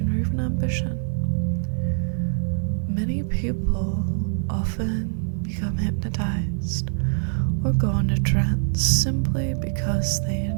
or even ambition. Many people often become hypnotized or go into trance simply because they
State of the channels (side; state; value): left; silent; 63 dB below the other